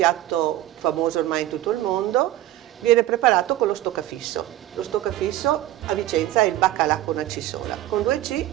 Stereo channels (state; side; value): quieter; left; 14.6 dB